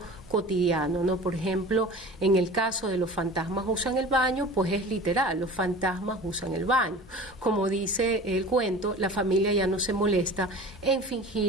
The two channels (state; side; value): normal; both; correlation 0.39